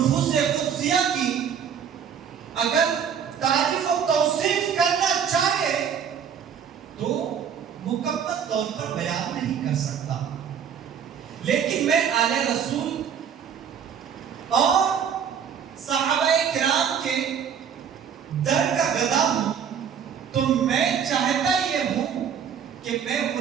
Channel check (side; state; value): left; quieter; 7.9 dB